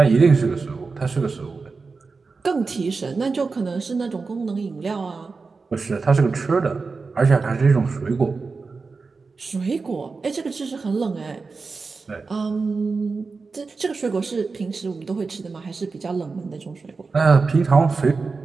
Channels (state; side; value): quieter; left; 4.4 dB